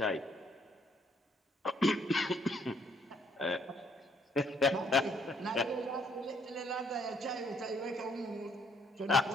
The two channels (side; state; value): both; normal; correlation 0.67